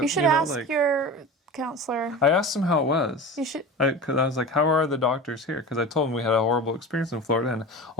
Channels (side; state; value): both; normal; correlation 0.32